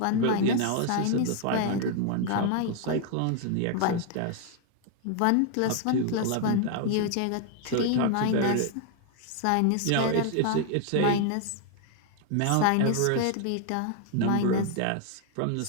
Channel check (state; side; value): different; both; correlation 0.00